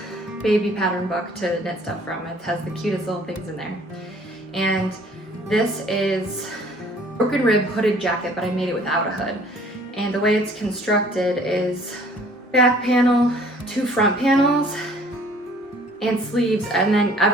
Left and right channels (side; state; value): both; normal; correlation 0.55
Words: baby pattern book to knit stuff from. It has the cutest little things in there. And this is broken rib hooded jacket, but I made it without a hood. And the way it's constructed is back panel, 2 front panels, and sleeves, and then